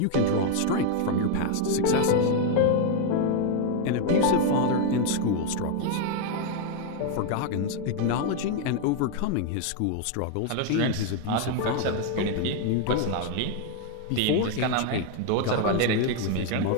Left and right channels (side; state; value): both; different; correlation 0.01